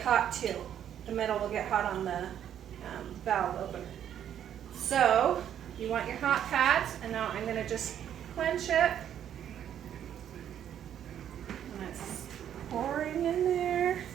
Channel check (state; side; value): quieter; left; 9.9 dB